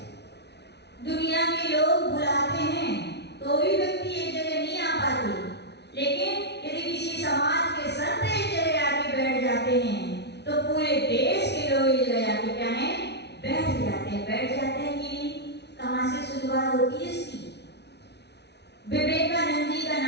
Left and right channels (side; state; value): right; late; 0.49 ms